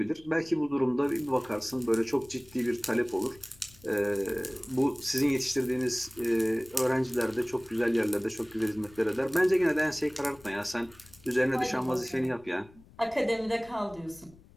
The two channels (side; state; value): left; noise; rumble, 25 dB below the sound